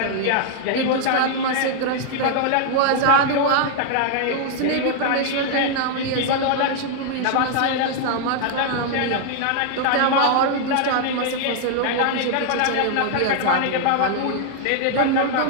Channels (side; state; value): both; different; correlation -0.01